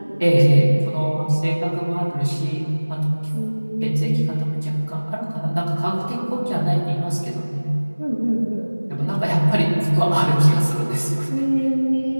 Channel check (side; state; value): both; inverted; correlation -1.00